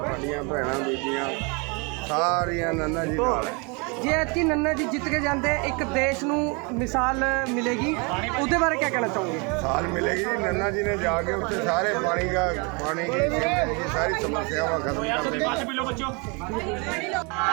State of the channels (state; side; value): quieter; left; 31.4 dB